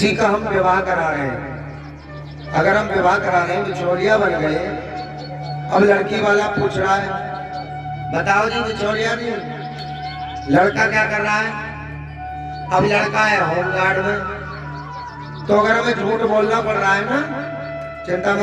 का हम विवाह करा रहे हैं। अगर हम विवाह करा रहे हैं, बिचौलिया बन गए, अब लड़की वाला पूछ रहा है, बताओ जी बिचौलिया जी लड़का क्या कर रहा है? अब लड़का है होमगार्ड में। तो अगर हमें झूठ बोलना पड़ रहा है ना, चिंता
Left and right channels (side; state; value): both; identical; correlation 1.00